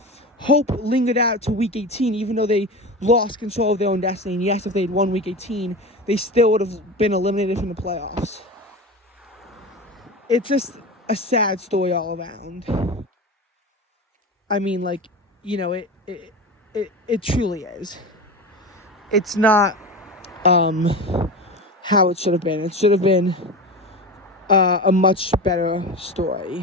hope lingered out to Week 18, even though they lost control of their own destiny. And yes, if they'd won Week 18, they still would have been eliminated from the playoffs. It's just a sad story all around. I mean, it truly is. It's not how it should have been. It should have been a much better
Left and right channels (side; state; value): both; normal; correlation 0.27